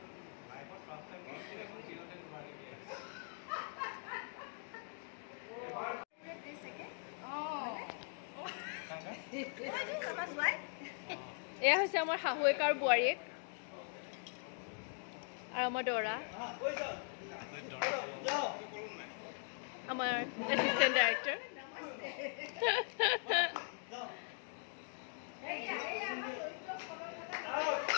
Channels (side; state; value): right; silent; 51 dB below the other